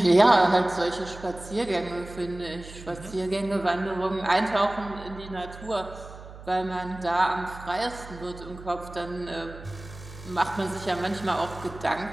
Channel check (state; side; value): noise; right; hum, 15 dB below the sound